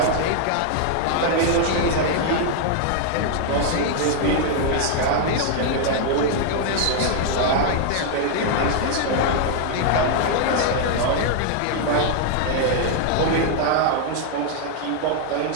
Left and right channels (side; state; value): both; different; correlation 0.00